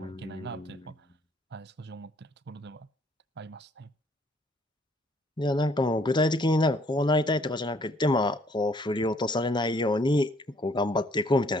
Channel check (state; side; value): normal; both; correlation 0.63